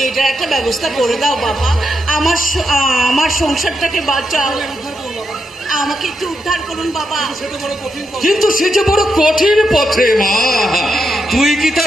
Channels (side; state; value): both; normal; correlation 0.83